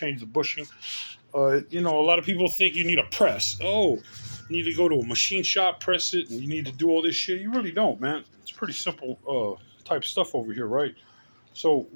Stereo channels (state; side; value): inverted; both; correlation -1.00